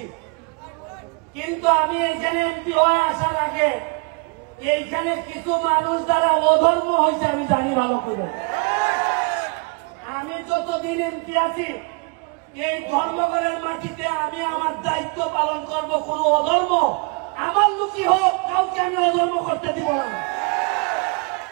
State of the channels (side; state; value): left; quieter; 33.0 dB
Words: কিন্তু আমি এইখানে এমপি হয়ে আসার আগে এইখানে কিছু মানুষ যারা অধর্ম হয়েছে আমি জানি ভালো করে। আমি যতদিন এমপি আছি এই ধর্মঘটের মাটিতে আমি আমার দায়িত্ব পালন করব। কোন অধর্ম আমার লুকি হোক, কাউকে আমি অধর্ম করতে দিব না।